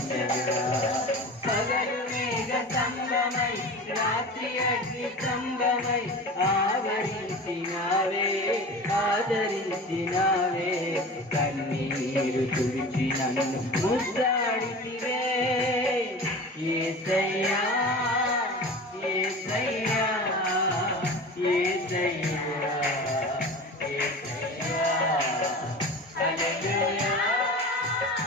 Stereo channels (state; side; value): normal; both; correlation 0.34